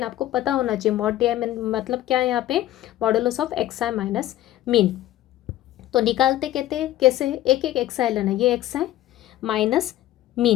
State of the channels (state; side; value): quieter; right; 14.1 dB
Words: आपको पता होना चाहिए मॉड डी आई में मतलब क्या है यहाँ पे, modulus of x I minus mean. तो निकालते कहते हैं कैसे, एक एक एक्स आई लेना, ये एक्स आई माइनस